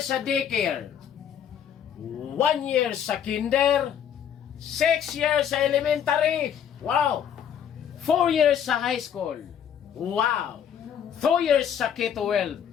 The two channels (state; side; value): quieter; right; 8.8 dB